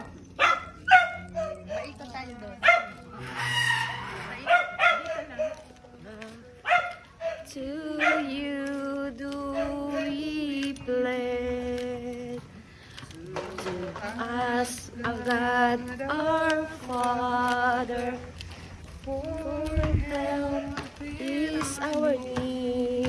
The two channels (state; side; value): identical; both; correlation 1.00